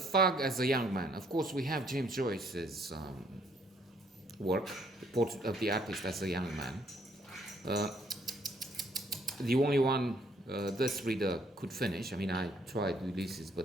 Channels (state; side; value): normal; both; correlation 0.66